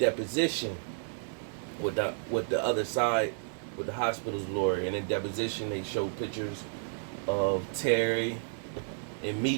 with the other side, with the hospital's lawyer, and in deposition they showed pictures of Terry and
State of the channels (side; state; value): left; silent; 57 dB below the other